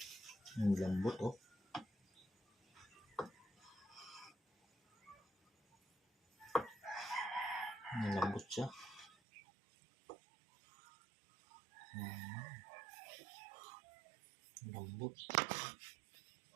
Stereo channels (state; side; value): drops out; left; at 9.1 s